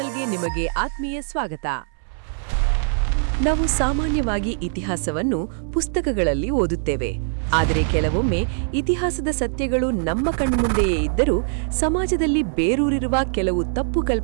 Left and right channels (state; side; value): silent; left; 62 dB below the other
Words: ನಿಮಗೆ ಆತ್ಮೀಯ ಸ್ವಾಗತ. ನಾವು ಸಾಮಾನ್ಯವಾಗಿ ಇತಿಹಾಸವನ್ನು ಪುಸ್ತಕಗಳಲ್ಲಿ ಓದುತ್ತೇವೆ. ಆದರೆ ಕೆಲವೊಮ್ಮೆ ಇತಿಹಾಸದ ಸತ್ಯಗಳು ನಮ್ಮ ಕಣ್ಮುಂದೆಯೇ ಇದ್ದರೂ ಸಮಾಜದಲ್ಲಿ ಬೇರೂರಿರುವ ಕೆಲವು ತಪ್ಪು